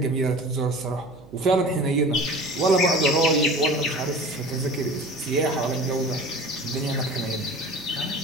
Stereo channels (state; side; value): noise; right; hum, 22 dB below the sound